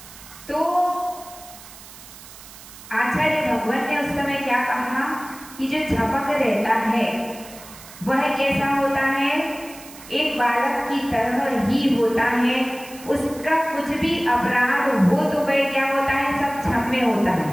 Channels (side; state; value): right; noise; hiss, 18 dB below the sound